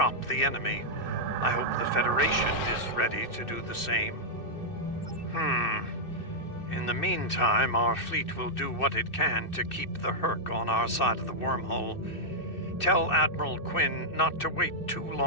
the enemy. I hope the Federation is ready to do the same. In the meantime, our fleet will do what it can to keep the Hur'q on our side of the wormhole. Tell Admiral Quinn not to wait too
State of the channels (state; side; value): late; right; 2.6 ms